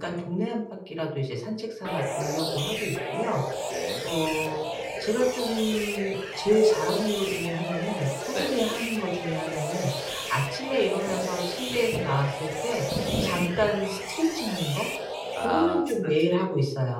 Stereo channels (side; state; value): both; identical; correlation 1.00